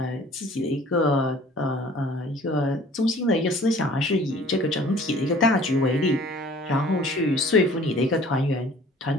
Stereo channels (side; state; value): both; normal; correlation 0.50